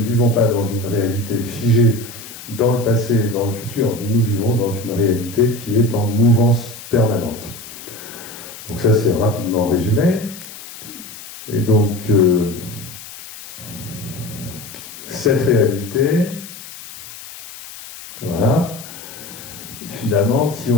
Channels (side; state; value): left; noise; hiss, 14 dB below the sound